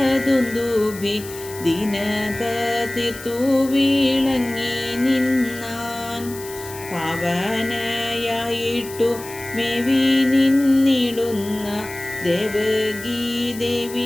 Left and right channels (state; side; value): noise; left; hiss, 15 dB below the sound